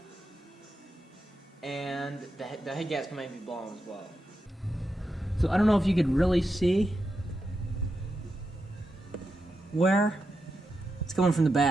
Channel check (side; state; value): both; normal; correlation 0.87